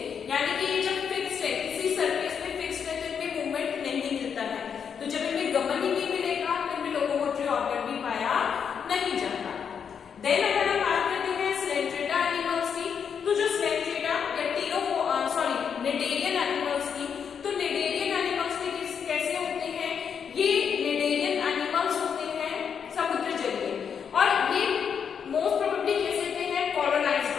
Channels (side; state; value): right; quieter; 7.1 dB